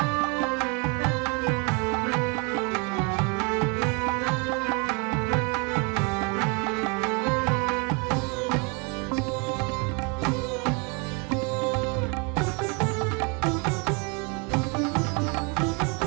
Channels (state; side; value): quieter; left; 32.7 dB